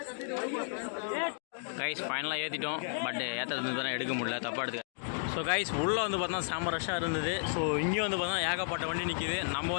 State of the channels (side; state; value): right; silent; digital silence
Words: கைஸ் ஃபைனலாக ஏற்றிட்டோம். பட் ஏற்றுறது தானே எடுக்க முடியல. தப்பாக எடுத்துக்க. ஸோ கைஸ் உள்ளே வந்து பார்த்தா செம்ம ரஷ்ஷாக இருந்தது. ஸோ இங்கேயும் வந்து பார்த்தா ஏகப்பட்ட வண்டி நிற்கிது. நம்ம